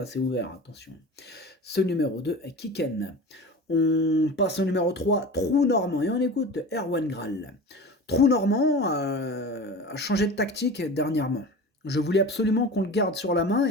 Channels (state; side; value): normal; both; correlation 0.33